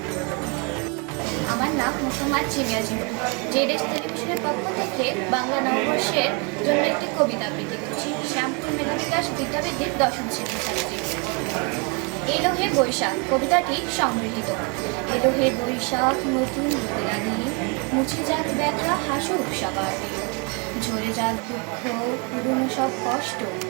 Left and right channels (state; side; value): quieter; left; 33.5 dB